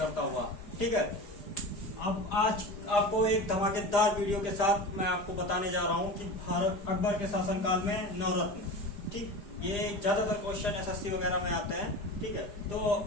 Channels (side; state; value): right; late; 4.9 ms